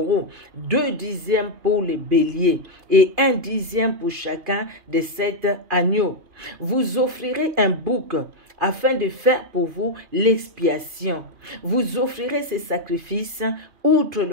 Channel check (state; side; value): late; left; 2.5 ms